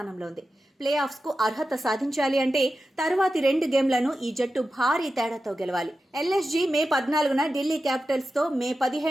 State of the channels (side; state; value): both; normal; correlation 0.92